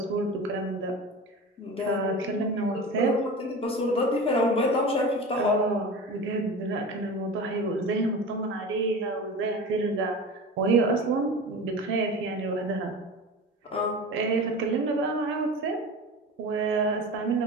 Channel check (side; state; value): both; normal; correlation 0.32